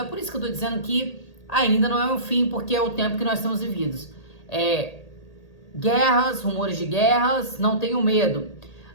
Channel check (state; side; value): late; right; 1.8 ms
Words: por isso que eu estou dizendo que ainda não é o fim, porque é o tempo que nós estamos vividos. Guerras, rumores de guerras, não tenham medo,